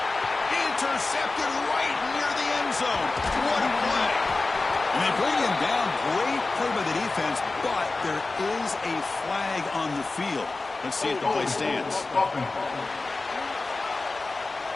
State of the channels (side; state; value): right; quieter; 3.5 dB